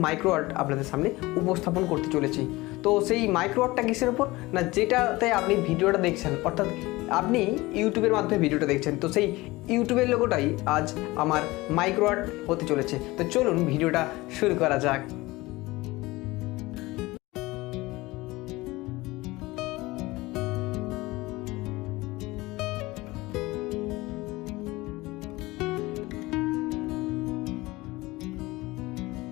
মাইক্রো আর্ট আপনাদের সামনে উপস্থাপন করতে চলেছি। তো সেই মাইক্রো আর্টটা কিসের উপর না, যেটাতে আপনি ভিডিওটা দেখছেন, অর্থাৎ আপনি ইউটিউবের মাধ্যমে ভিডিওটা দেখছেন, তো সেই ইউটিউবের লোগোটাই আজ আমার মাইক্রো আর্ট হতে চলেছে। তো চলুন ভিডিওটা শুরু করা যাক।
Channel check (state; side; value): quieter; right; 20.6 dB